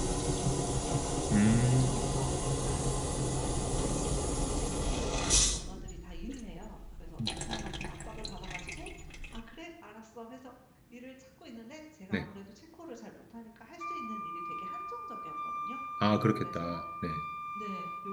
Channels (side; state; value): both; identical; correlation 1.00